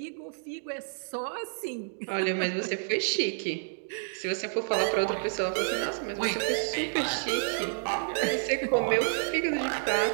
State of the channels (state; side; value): silent; left; digital silence